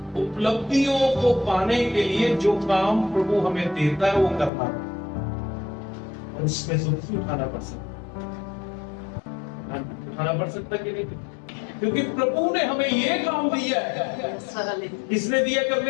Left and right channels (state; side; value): drops out; right; at 4.5 s